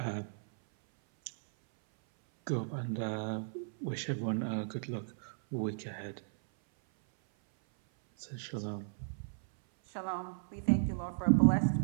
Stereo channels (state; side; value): silent; left; 55 dB below the other